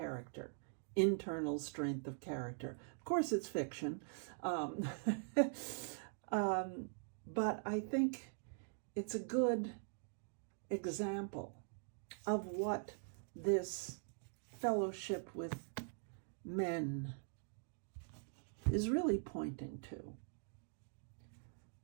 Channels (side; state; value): left; silent; digital silence